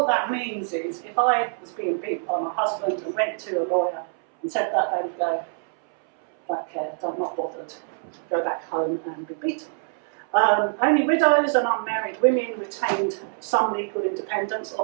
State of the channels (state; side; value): silent; left; 62 dB below the other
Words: that means is, if I was being beaten by my husband and went to a lawyer and said that, they would go, don't care, I'm not bothered, go back home and be beaten. Only widows and unmarried women retained some legal independence,